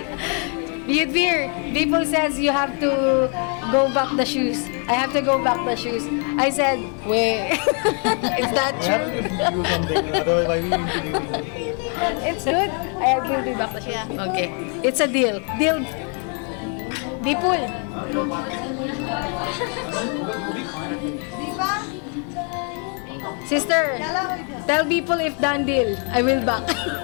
Biyudbir, people says you have to go back the shoes. I have to go back the shoes. I said, wait, is that We have to true? give you something, otherwise why we need to give you? It's good. I will give back the shoes. Okay, it's a deal. Deal. Bipul. Sister, tell people if done deal. I will back.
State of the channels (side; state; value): right; quieter; 39.8 dB